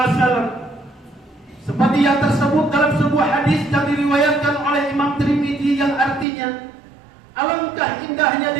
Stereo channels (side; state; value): left; drops out; at 6.2 s